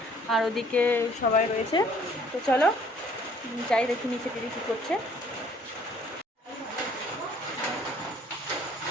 আর ওদিকে সবাই রয়েছে। তো চলো যাই দেখি নিচে দিদি কী করছে।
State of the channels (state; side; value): normal; both; correlation 0.58